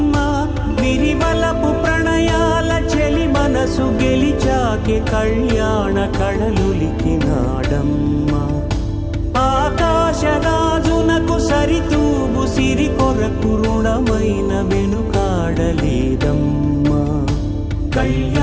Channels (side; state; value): both; identical; correlation 1.00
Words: విరివలపు ప్రణయాల చెలి మనసు గెలిచాకె కళ్యాణ కళలులికినాడమ్మ ఆకాశరాజునకు సరితూగు సిరి కొరకు రుణమైన వెనుకాడలేదమ్మా